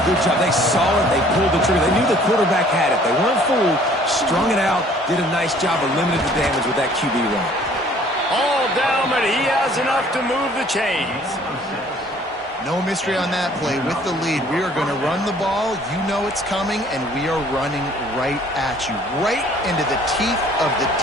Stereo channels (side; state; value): both; normal; correlation 0.56